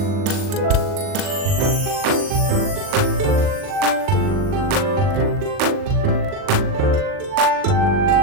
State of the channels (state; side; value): late; left; 40 ms